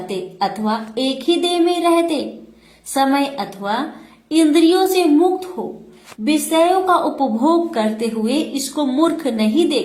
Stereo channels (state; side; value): identical; both; correlation 1.00